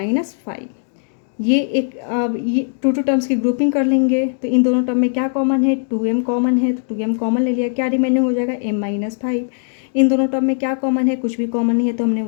ये एक अब ये 2 टर्म्स की ग्रुपिंग कर लेंगे। तो इन दोनों टर्म में क्या कॉमन है, 2m कॉमन है। तो 2m कॉमन ले लिया, क्या रिमेनिंग हो जाएगा, m-5। इन दोनों टर्म में क्या कॉमन है, कुछ भी कॉमन नहीं है, तो हमने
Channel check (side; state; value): right; silent; digital silence